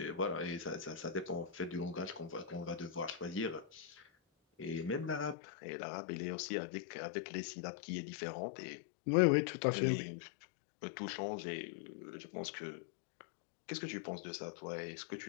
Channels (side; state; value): right; drops out; at 5.4 s